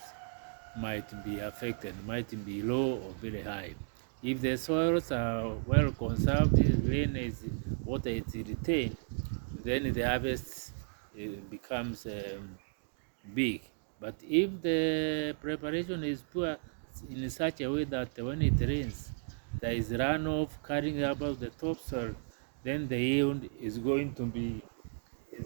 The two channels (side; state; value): left; silent; digital silence